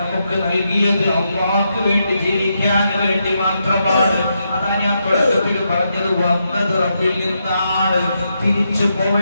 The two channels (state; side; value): inverted; both; correlation -0.83